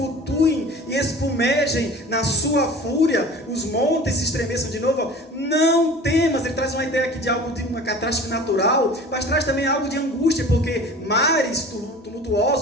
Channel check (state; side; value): normal; both; correlation 0.41